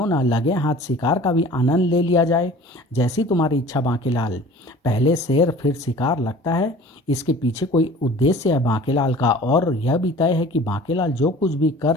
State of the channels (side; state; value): both; normal; correlation 0.45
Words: ना लगे हाथ शिकार का भी आनंद ले लिया जाए। जैसी तुम्हारी इच्छा बांकेलाल। पहले शेर फिर शिकार, लगता है इसके पीछे कोई उद्देश्य है बांकेलाल का। और यह भी तय है कि बांकेलाल जो कुछ भी कर